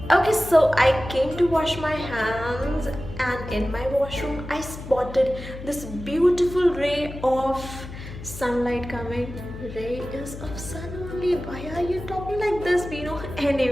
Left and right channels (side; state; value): left; noise; hum, 12 dB below the sound